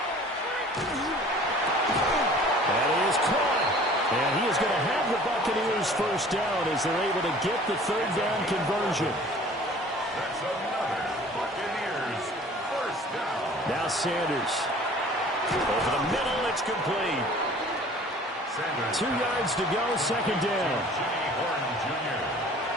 That is caught. And he is going to have the Buccaneers first down as they're able to get the 3rd down conversion. That's another Buccaneers first down. Now Sanders. Over the middle, it's complete. Sanders 2 yards to go, 2nd down. Jimmy Horn Jr.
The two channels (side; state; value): both; normal; correlation 0.48